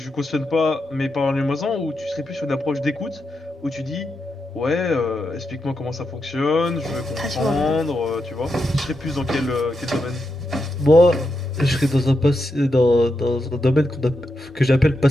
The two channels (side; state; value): both; normal; correlation 0.85